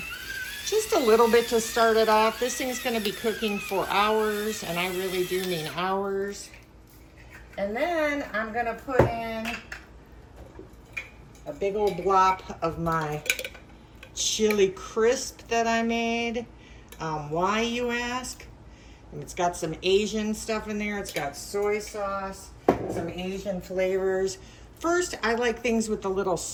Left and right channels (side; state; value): both; identical; correlation 1.00